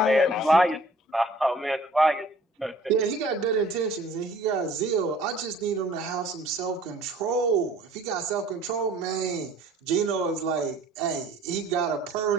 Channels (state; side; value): normal; both; correlation 0.52